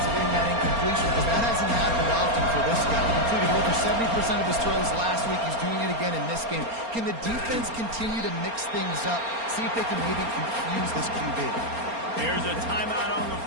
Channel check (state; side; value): late; left; 4.3 ms